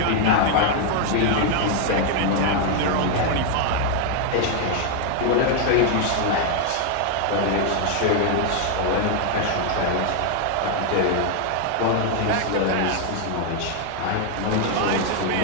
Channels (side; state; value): both; different; correlation 0.00